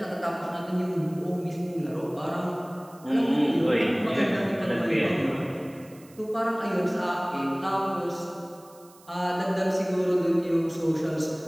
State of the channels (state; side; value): noise; right; hiss, 25 dB below the sound